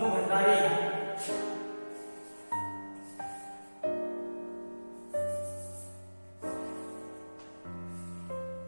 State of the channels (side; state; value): both; inverted; correlation -1.00